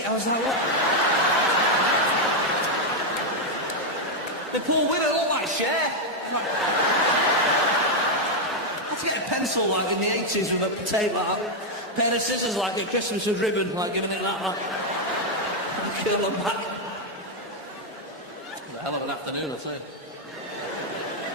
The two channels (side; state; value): both; normal; correlation 0.01